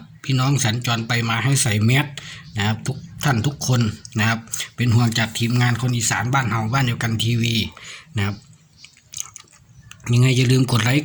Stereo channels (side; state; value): both; identical; correlation 1.00